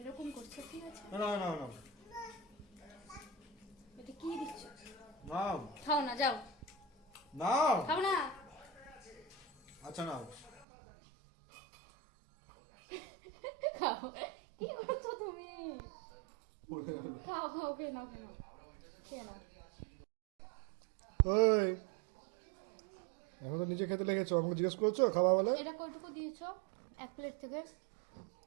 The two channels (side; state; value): left; drops out; at 10.7 s